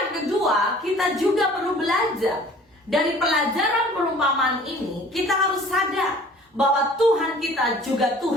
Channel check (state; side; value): normal; both; correlation 0.49